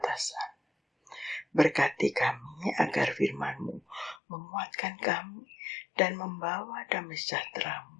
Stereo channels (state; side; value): drops out; right; at 4.2 s